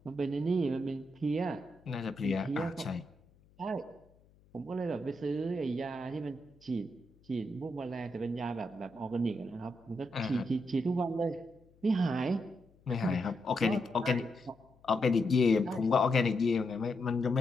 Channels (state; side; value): noise; left; hum, 30 dB below the sound